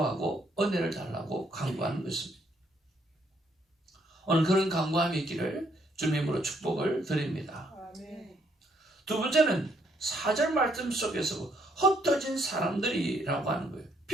은혜를 달라고 간구하는 것입니다. 오늘 그런 간구함이 있기를 주님으로 축복을 드립니다. 두 번째는 4절 말씀 속에서 흩어진 사람들이라고 하는 거예요.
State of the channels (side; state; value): both; normal; correlation 0.71